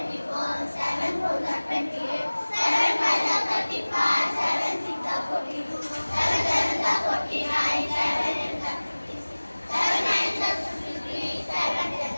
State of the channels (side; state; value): both; inverted; correlation -1.00